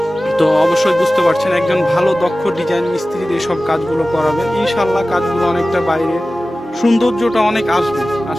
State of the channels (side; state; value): both; normal; correlation 0.96